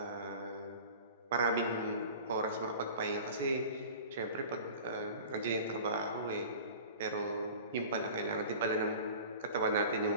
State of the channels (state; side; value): inverted; both; correlation -0.39